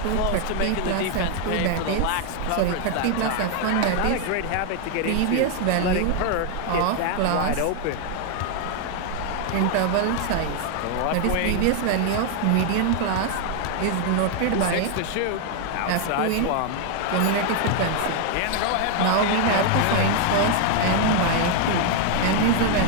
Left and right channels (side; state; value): both; different; correlation 0.00